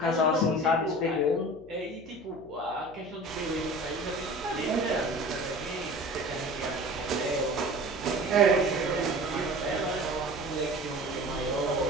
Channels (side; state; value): left; noise; hum, 20 dB below the sound